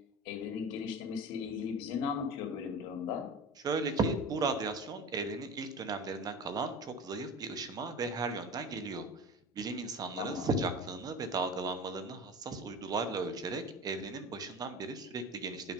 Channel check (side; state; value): both; normal; correlation 0.33